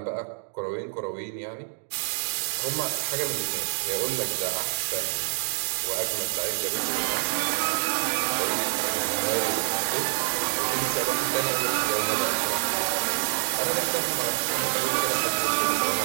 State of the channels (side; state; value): left; silent; digital silence